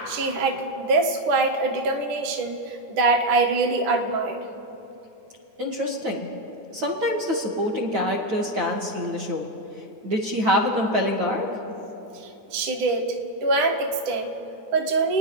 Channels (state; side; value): late; left; 9.9 ms